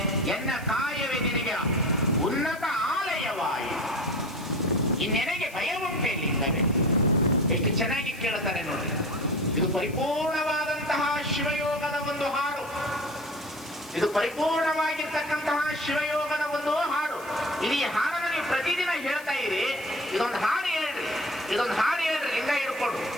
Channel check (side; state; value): left; noise; hiss, 19 dB below the sound